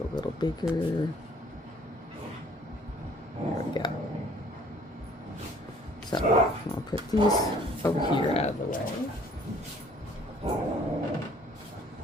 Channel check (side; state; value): both; normal; correlation 0.57